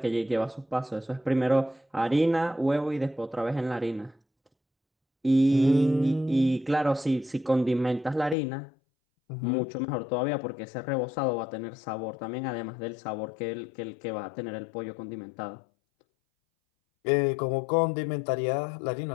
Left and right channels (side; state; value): right; drops out; at 8.3 s